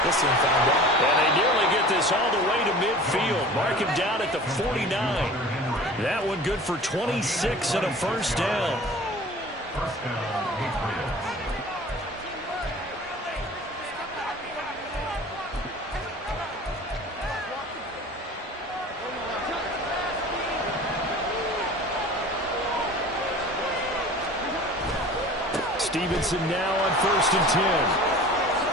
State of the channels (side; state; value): both; normal; correlation 0.41